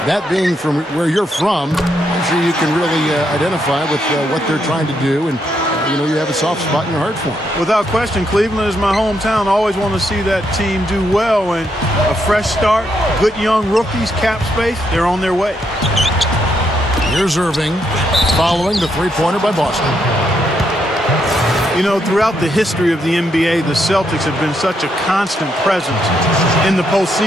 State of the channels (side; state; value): both; normal; correlation 0.78